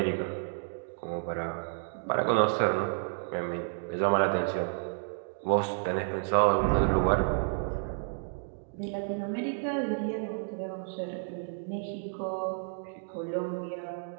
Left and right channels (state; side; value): silent; left; digital silence